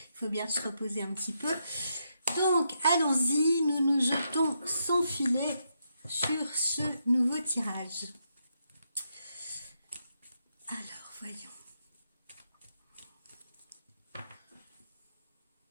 faut bien se reposer un petit peu. Donc allons-y, nous nous jetons sans filet sur ce nouveau tirage. Alors voyons.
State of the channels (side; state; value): both; inverted; correlation -0.81